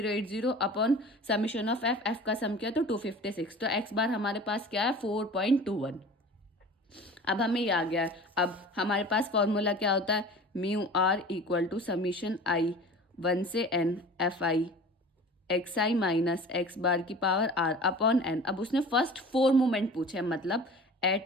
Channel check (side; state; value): both; normal; correlation 0.41